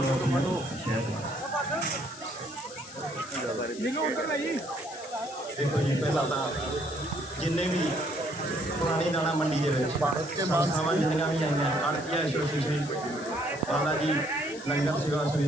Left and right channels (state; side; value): noise; left; hiss, 15 dB below the sound